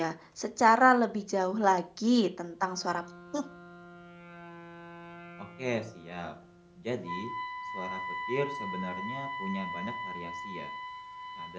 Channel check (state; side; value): identical; both; correlation 1.00